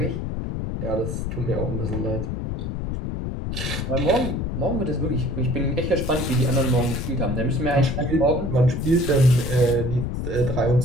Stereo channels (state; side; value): noise; left; rumble, 3 dB below the sound